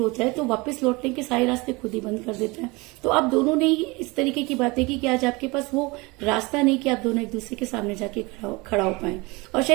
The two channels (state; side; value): quieter; left; 25.1 dB